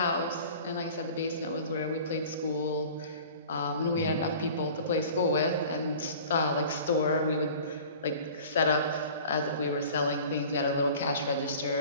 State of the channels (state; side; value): inverted; both; correlation -0.43